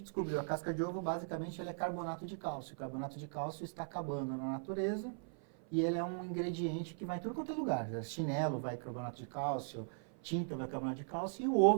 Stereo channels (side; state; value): left; silent; 52 dB below the other